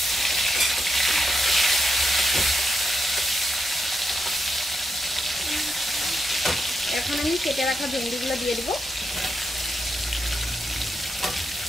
এখন আমি কেটে রাখা ভেন্ডিগুলো দিয়ে দিব।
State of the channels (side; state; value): both; normal; correlation 0.82